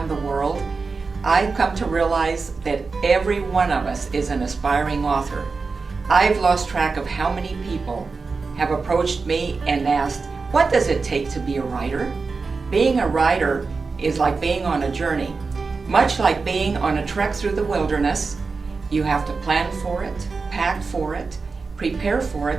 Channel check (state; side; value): quieter; left; 4.4 dB